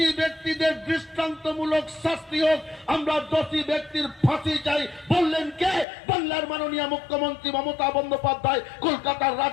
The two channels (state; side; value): drops out; right; at 5.9 s